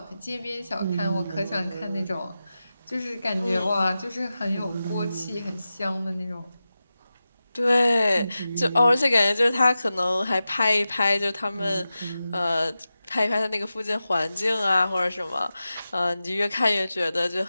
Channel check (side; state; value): both; inverted; correlation -0.93